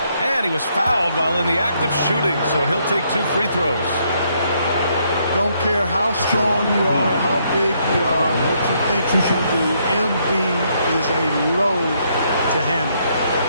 And he was fouled while in the act of shooting, so he'll take 2 free throws. Don't care how strong you are, how big you are, what you think you can do. Embiid is a load to handle.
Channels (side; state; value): both; inverted; correlation -0.73